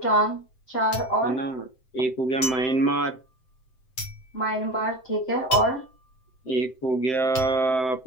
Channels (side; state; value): right; late; 7.8 ms